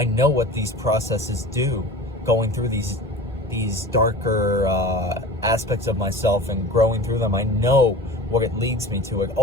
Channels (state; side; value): normal; both; correlation 0.37